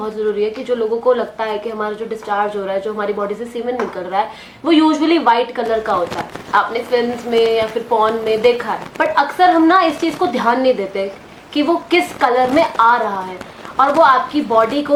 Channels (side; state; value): both; identical; correlation 1.00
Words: जरूरी है कि जो लोगों को लगता है कि हमारा जो डिस्चार्ज हो रहा है, जो हमारी बॉडी से सीमेन निकल रहा है, वो यूजुअली व्हाइट कलर का होता है। आपने फिल्म्स में या फिर पॉर्न में देखा है, बट अक्सर हम ना इस चीज को ध्यान नहीं देते कि वो किस कलर में आ रहा है और वो आपकी बॉडी